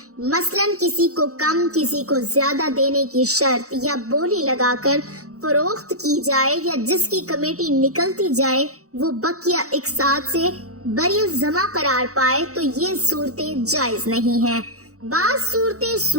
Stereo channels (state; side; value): late; left; 0.65 ms